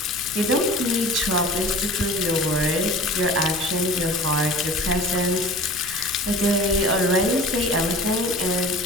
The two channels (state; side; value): noise; left; rumble, 19 dB below the sound